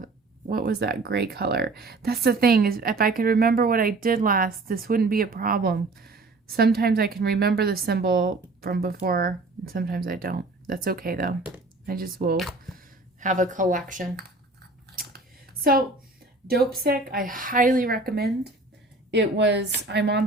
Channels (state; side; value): quieter; left; 3.2 dB